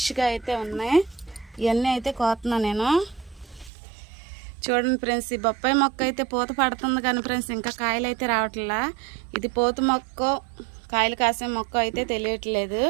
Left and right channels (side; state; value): left; drops out; at 3.7 s